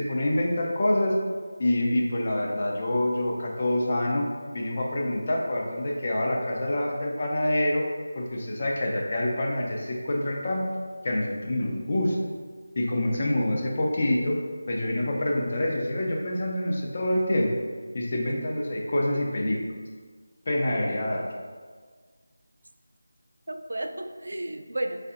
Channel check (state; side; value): inverted; both; correlation -0.95